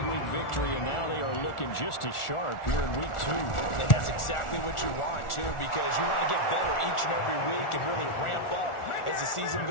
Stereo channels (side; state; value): right; late; 1.4 ms